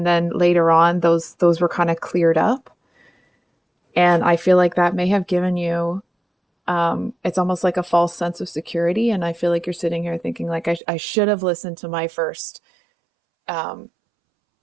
then later on, those were kind of cleared up. And I feel like that may have given you, it's almost like a false sense of security. And I feel like you're sitting here thinking like, I should have listened to my first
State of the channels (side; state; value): left; drops out; at 10.8 s